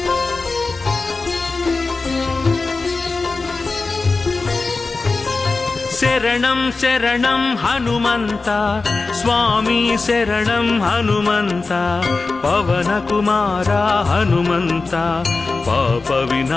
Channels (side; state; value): right; quieter; 3.8 dB